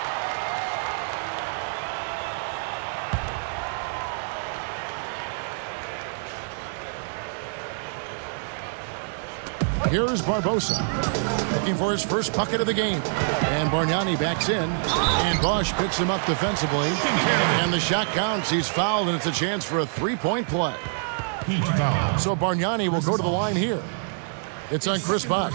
Here's Barbosa, looking for his first bucket of the game. And Bargnani backs in, and Bosh picks him up defensively. And the shot counts. He's fouled, and it's a chance for a three-point play. So Bargnani will go to the line here. It's on Chris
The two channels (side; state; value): left; silent; digital silence